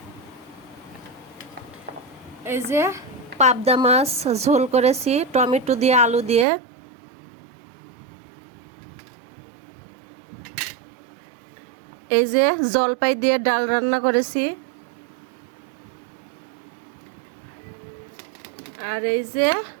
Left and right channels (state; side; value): drops out; left; at 6.5 s